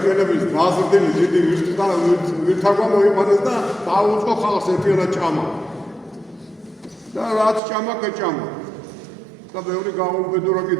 დაზრდილი დიდი ვირთაგვა მოიყვანეს და დაუწყო ხალხს ერთიანად ჭამა. და რაც ჭამა კეჭამა. და ბევრი გაუბედურა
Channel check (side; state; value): left; drops out; at 7.6 s